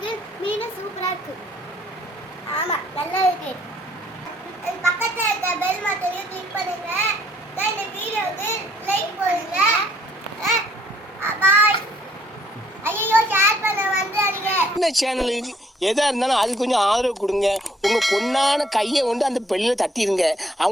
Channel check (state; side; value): normal; both; correlation 0.64